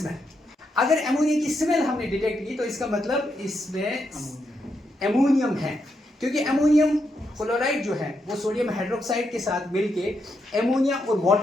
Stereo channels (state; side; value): normal; both; correlation 0.81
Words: अगर एमोनिया की स्मेल हमने डिटेक्ट की तो इसका मतलब इसमें एमोनियम है, क्योंकि एमोनियम क्लोराइड जो है वो सोडियम हाइड्रोक्साइड के साथ मिलके एमोनिया और